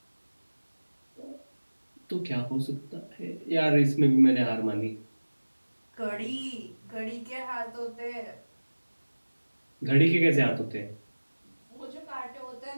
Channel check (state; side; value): inverted; both; correlation -1.00